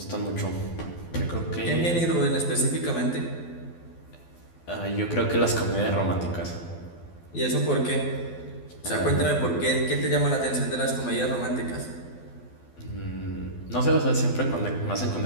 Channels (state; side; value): late; right; 12 ms